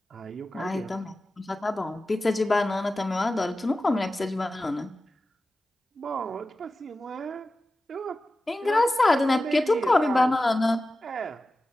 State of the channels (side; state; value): both; normal; correlation 0.94